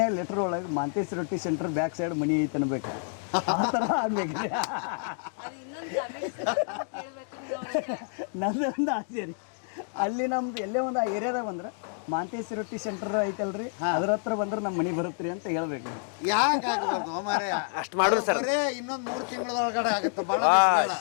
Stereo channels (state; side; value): silent; right; 59 dB below the other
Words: ಲೆಟರ್ ಒಳಗೆ ಮಾಂತೇಶ್ ರೊಟ್ಟಿ ಸೆಂಟರ್ ಬ್ಯಾಕ್ ಸೈಡ್ ಮನಿ ಐತೆ ಅನ್ಬೇಕ್ರಿ, ಆ ಥರ ಆಗ್ಬೇಕ್ರಿ. ನಂದೊಂದು ಆಸೆ ರೀ, ಅಲ್ಲಿ ನಮ್ದು ಎಲ್ಲೇ ಒಂದು ಆ ಏರಿಯಾದಾಗ ಬಂದ್ರೆ ಮಾಂತೇಶ್ ರೊಟ್ಟಿ ಸೆಂಟರ್ ಐತಲ್ರಿ, ಅದ್ರ ಹತ್ರ ಬಂದ್ರೆ ನಮ್ಮ ಮನಿ ಬರತ್ರಿ ಅಂತ ಹೇಳ್ಬೇಕ್ರಿ. ಅಷ್ಟು ಮಾಡೋದು ಬರೇ ಇನ್ನೊಂದು 3 ತಿಂಗಳೊಳಗಡೆ ಆಗುತ್ತೆ. ಬಹಳ